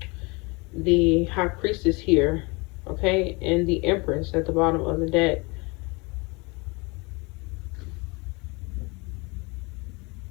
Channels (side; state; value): right; quieter; 27.3 dB